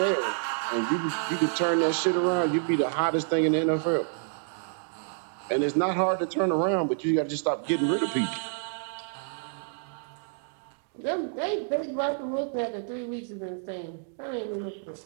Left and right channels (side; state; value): left; silent; digital silence